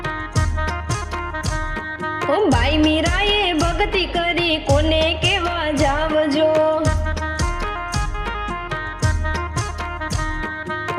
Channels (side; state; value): both; identical; correlation 1.00